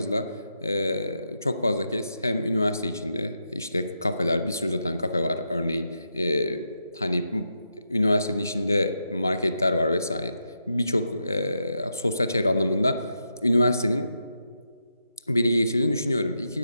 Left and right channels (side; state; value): both; inverted; correlation -0.84